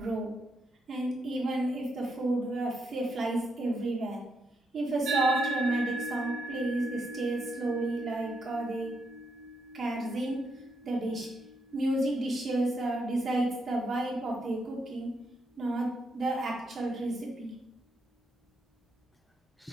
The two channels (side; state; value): both; normal; correlation 0.80